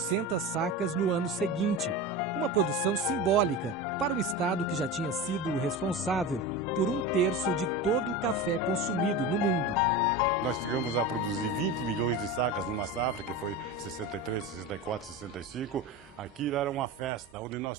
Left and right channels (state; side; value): normal; both; correlation 0.26